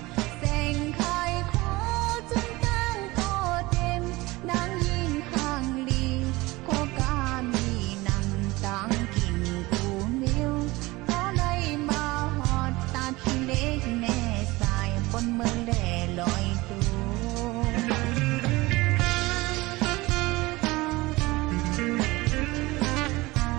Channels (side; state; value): left; quieter; 21.2 dB